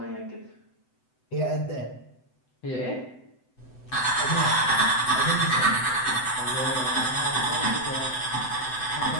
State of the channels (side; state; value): right; late; 7.9 ms